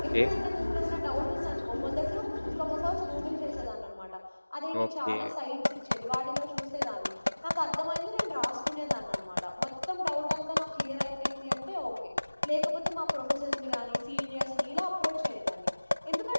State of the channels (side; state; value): both; inverted; correlation -1.00